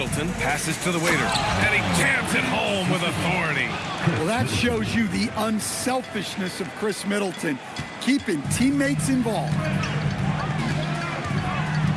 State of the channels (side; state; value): both; identical; correlation 1.00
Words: passes to the waiter, and he jams it home with authority. Well, that shows you the unselfishness of Chris Middleton, keeping teammates involved.